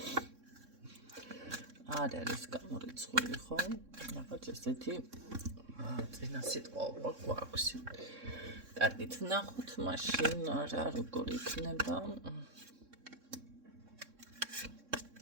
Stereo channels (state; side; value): late; left; 3.6 ms